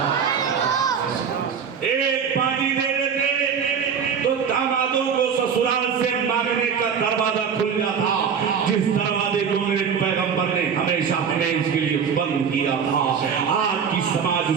ایک باندھی دے دیتے تو دامادوں کو سسرال سے مانگنے کا دروازہ دروازہ کھل جاتا جس دروازے کو میرے پیغمبر نے ہمیشہ ہمیشہ کے لیے بند کیا تھا. آج کی سماج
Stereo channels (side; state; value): left; quieter; 6.9 dB